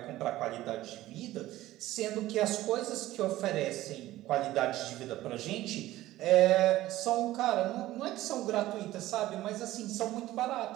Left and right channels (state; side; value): quieter; left; 15.8 dB